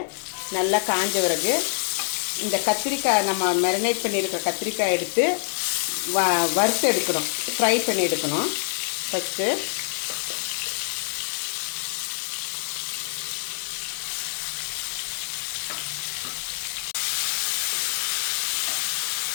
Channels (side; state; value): right; silent; digital silence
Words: நல்லா காஞ்ச பிறகு இந்த கத்திரிக்காய் நம்ம மேரினேட் பண்ணியிருக்கிற கத்திரிக்காய் எடுத்து வறுத்து எடுக்கணும், ஃப்ரை பண்ணி எடுக்கணும். ஃபஸ்ட்டு